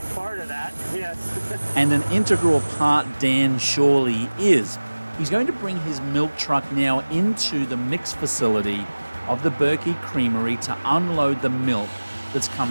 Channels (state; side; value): inverted; both; correlation -1.00